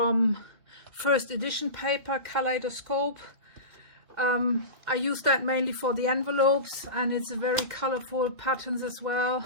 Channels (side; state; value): left; late; 2.1 ms